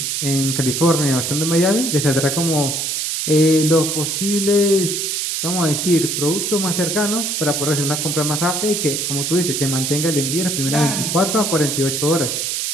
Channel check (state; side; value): noise; right; hiss, 1 dB below the sound